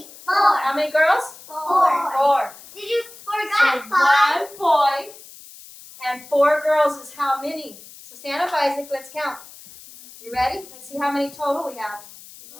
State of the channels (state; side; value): noise; left; hiss, 19 dB below the sound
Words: 4. How many girls? 4. 4. Did you So forget 5? 1 boy and 4 girls is how many? So stand up, Isaac. Let's count. You ready? Let's see how many total we have.